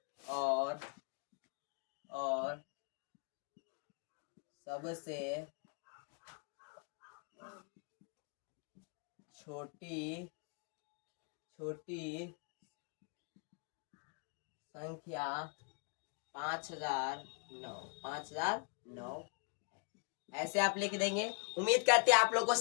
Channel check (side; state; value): right; quieter; 35.1 dB